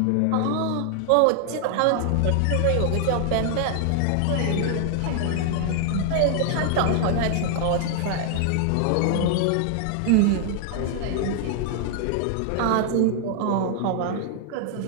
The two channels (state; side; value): different; both; correlation 0.00